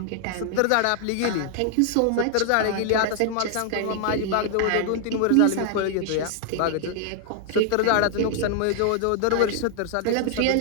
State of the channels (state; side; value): different; both; correlation 0.00